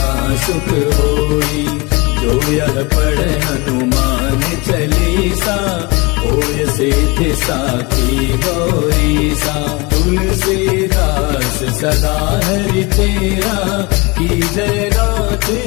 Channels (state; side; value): quieter; right; 26.6 dB